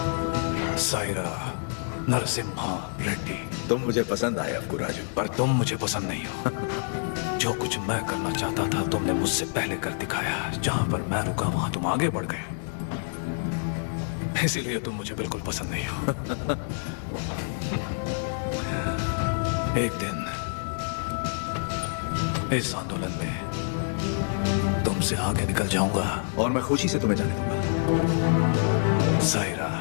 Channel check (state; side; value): silent; right; digital silence